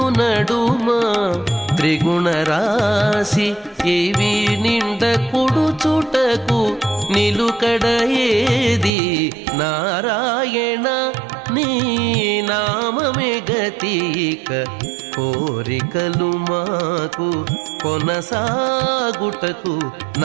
నడుమ త్రిగుణరాశి ఇవి నిండ కుడుచుటకు నిలుకడ ఏది నారాయణ నీ నామమే గతిక కోరికలు మాకు కొనసాగుటకు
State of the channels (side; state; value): left; drops out; at 8.9 s